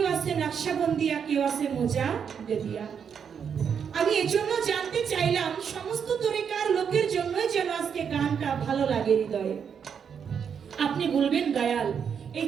আছে নকশবন্দিয়া, কেউ আছে মুজাদ্দিদিয়া। আমি এজন্য জানতে চাইলাম সমস্ত তরিকার লোকের জন্যই যেন আজকে গানটা ভালো লাগে হৃদয়ে। আপনি বলবেন দয়াল এই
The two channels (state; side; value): quieter; left; 7.2 dB